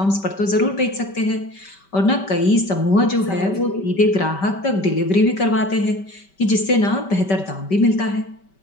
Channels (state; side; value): late; right; 5.2 ms